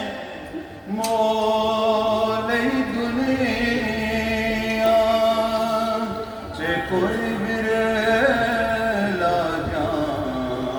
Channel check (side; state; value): both; identical; correlation 1.00